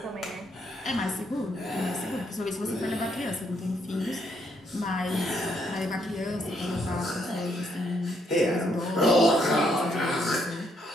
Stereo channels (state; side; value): normal; both; correlation 0.73